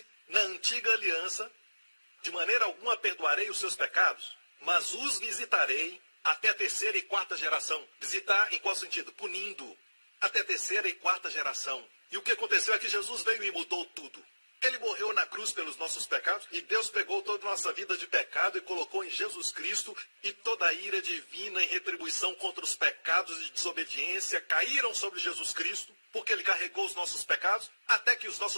na antiga aliança, de maneira alguma perdoarei os seus pecados, mas os visitarei até a 3ª e 4ª geração. Visitar em qual sentido? Punindo. Até a 3ª e 4ª geração. E o que aconteceu é que Jesus veio e mudou tudo. Ele morreu na cruz pelos nossos pecados e Deus pegou toda a nossa vida de pecado e colocou em Jesus Cristo, e toda a ira divina em retribuição contra os pecados de desobediência caíram sobre Jesus Cristo, porque ele carregou os nossos pecados, até que os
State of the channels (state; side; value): inverted; both; correlation -1.00